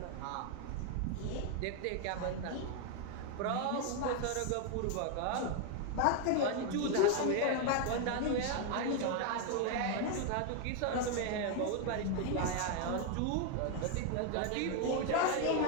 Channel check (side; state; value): both; different; correlation 0.01